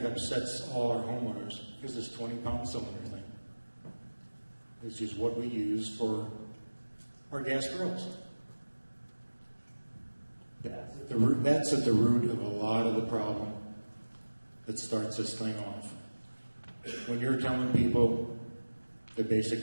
upsets all our homeowners is this 20-pound cylinder thing. It's just what we use for our gas grills. That's at the root of a lot of the problem that starts this thing off. When you're telling people that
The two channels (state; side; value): inverted; both; correlation -1.00